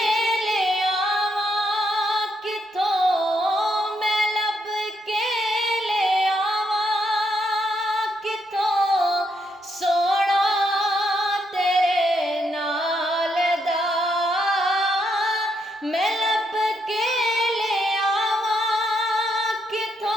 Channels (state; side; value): normal; both; correlation 0.77